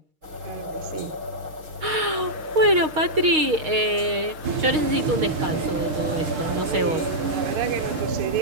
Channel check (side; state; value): left; late; 6.4 ms